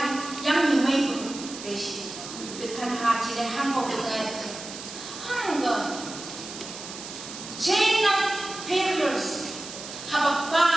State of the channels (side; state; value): right; noise; hiss, 11 dB below the sound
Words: giống như mấy người để gì tôi khả năng chỉ để hàng một người hai người chain of failures have a